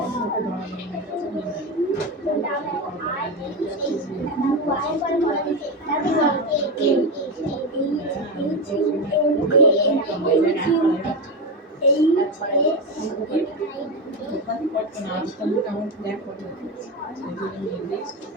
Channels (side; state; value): both; normal; correlation 0.15